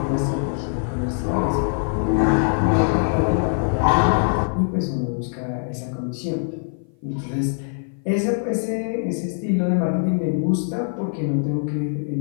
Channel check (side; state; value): right; silent; 56 dB below the other